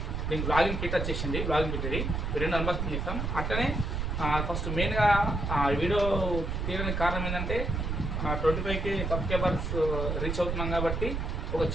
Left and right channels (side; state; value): right; noise; rumble, 1 dB below the sound